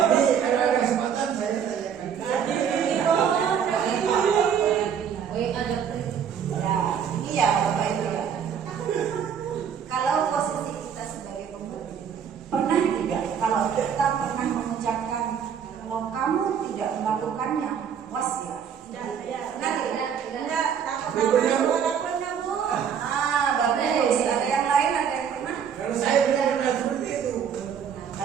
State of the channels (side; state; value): left; quieter; 7.8 dB